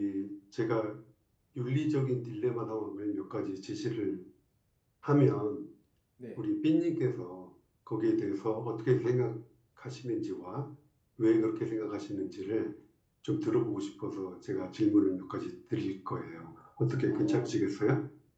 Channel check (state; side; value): identical; both; correlation 1.00